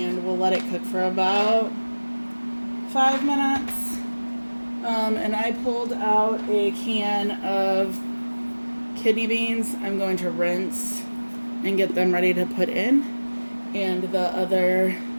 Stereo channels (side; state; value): both; inverted; correlation -1.00